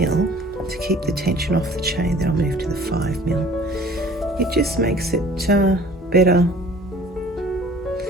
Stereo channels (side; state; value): both; normal; correlation 0.50